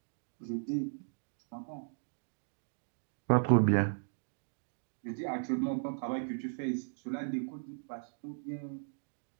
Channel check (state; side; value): silent; left; digital silence